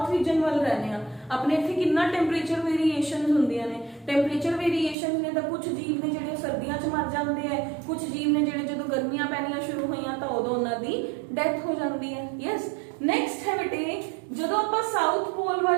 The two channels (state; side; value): drops out; left; at 5.0 s